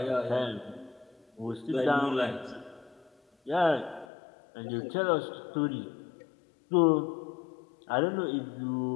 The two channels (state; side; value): drops out; right; at 4.0 s